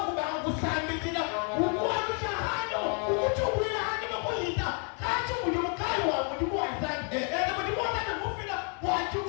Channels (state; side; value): quieter; right; 39.9 dB